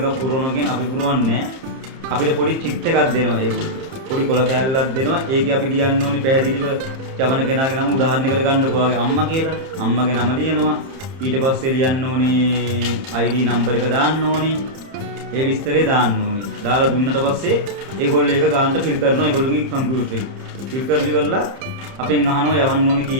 පුරවනවා කියන්නේ අපි පුරවන්නේ අපිට පොඩි චිට් එකක් දෙනවා ඒගොල්ලෝ. පොඩි කොළ කෑල්ලක් දෙනවා. ඒකේ අපි ලියන්න ඕනි පැහැදිලිව යවන කෙනාගේ නම උදාහරණයකට ගන්නකො ඔයාගේ අම්මා කියලා. අම්මගේ නම ලියනවා. ඊට පස්සේ ලියන්න ඕනි ID නම්බර් එක දාන්න ඕනි. ඒ විස්තරේ දාන්න ඕනි. දාලා දුන්නට පස්සේ ඒගොල්ලෝ ඒක ගානට ෆිල් කරනවා ඒගොල්ලෝගේ කම්පියුටරේ. ෆිල් කරලි කරලා අපෙන් අහනවා යවන්න ඕනි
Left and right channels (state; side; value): late; left; 30 ms